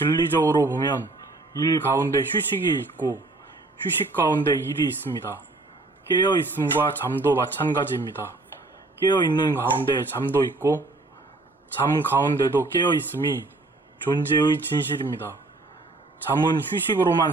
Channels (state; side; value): quieter; left; 3.1 dB